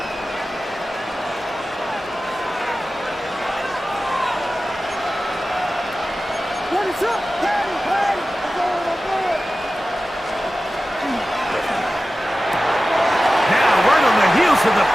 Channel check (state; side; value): normal; both; correlation 0.95